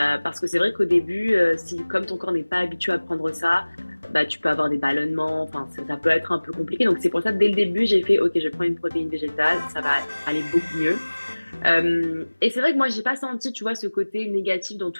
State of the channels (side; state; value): both; inverted; correlation -1.00